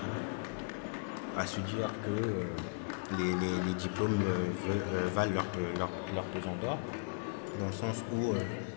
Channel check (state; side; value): silent; right; 53 dB below the other